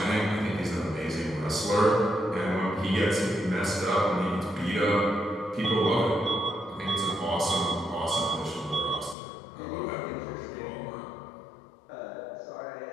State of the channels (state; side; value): drops out; right; at 9.2 s